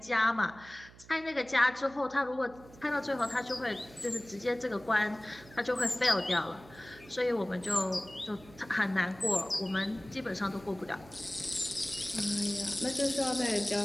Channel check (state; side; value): noise; right; hum, 21 dB below the sound